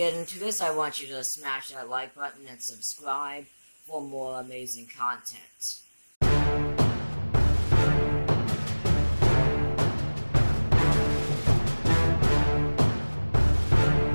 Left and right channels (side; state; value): both; inverted; correlation -1.00